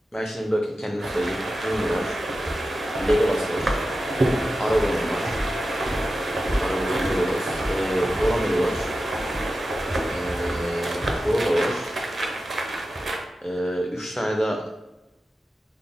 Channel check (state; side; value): normal; both; correlation 0.92